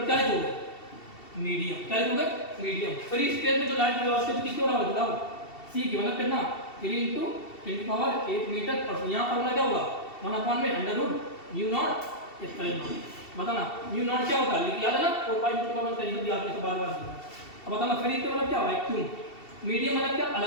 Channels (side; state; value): right; late; 2.7 ms